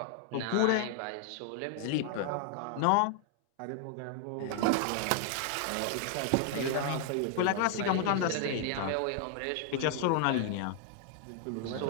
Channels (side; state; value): both; different; correlation 0.00